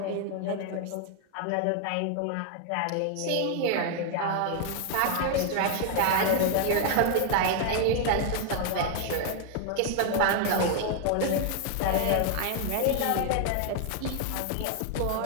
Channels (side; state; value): both; different; correlation 0.00